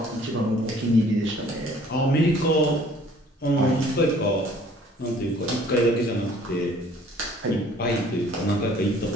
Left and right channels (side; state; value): both; normal; correlation 0.55